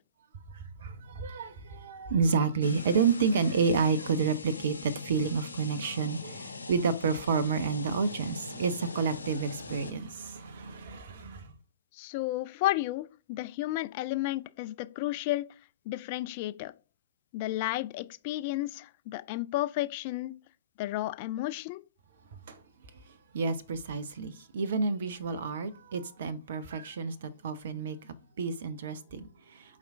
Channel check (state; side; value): inverted; both; correlation -0.43